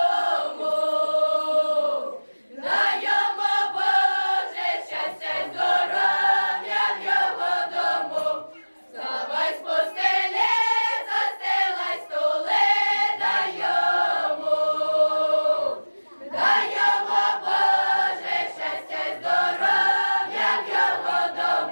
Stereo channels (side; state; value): both; inverted; correlation -1.00